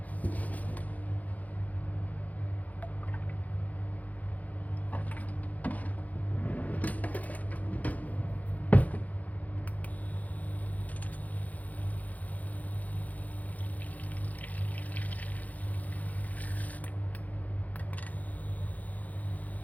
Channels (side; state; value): right; late; 0.077 ms